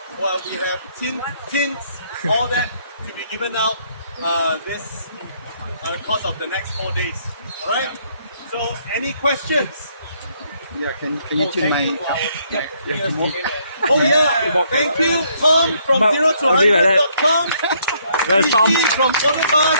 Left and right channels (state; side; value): inverted; both; correlation -0.69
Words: Well, we have tints. All that to be given out this course of the next 4 days. All right. So, any questions? Yeah, can you tune my... Oh yeah, thank you Tom from 0 to 100.com, Tom. from